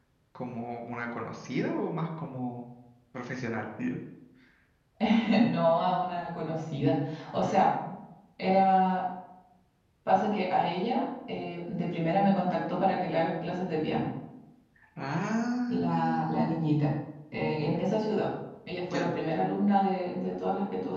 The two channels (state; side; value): identical; both; correlation 1.00